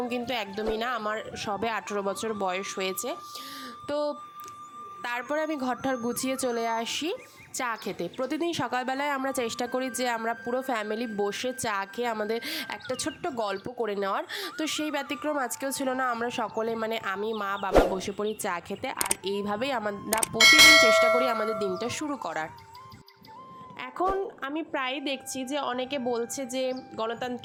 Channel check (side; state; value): both; identical; correlation 1.00